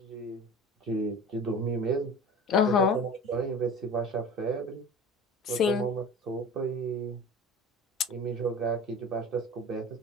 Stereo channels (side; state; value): both; normal; correlation 0.37